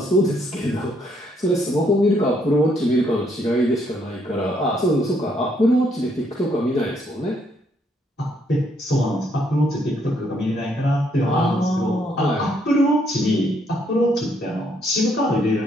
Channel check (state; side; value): normal; both; correlation 0.71